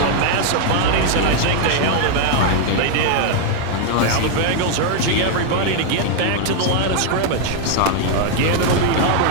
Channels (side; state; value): both; different; correlation 0.00